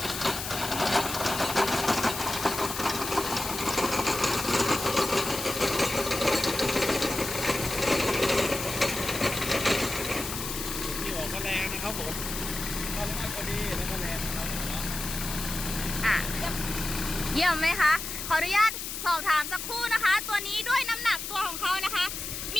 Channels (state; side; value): noise; left; hiss, 6 dB below the sound